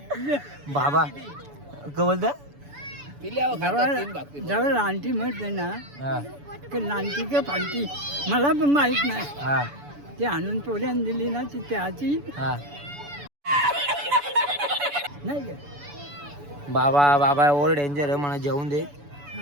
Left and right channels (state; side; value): late; left; 7.0 ms